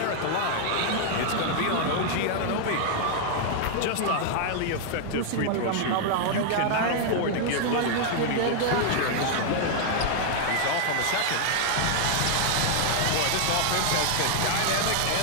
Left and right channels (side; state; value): both; different; correlation 0.00